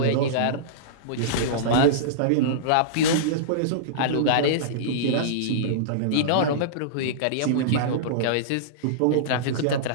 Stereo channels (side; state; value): both; different; correlation -0.03